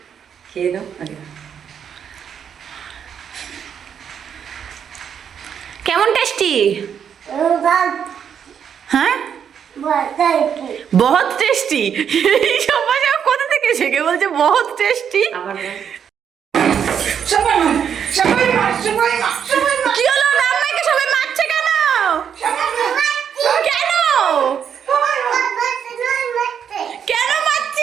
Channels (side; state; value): left; quieter; 8.0 dB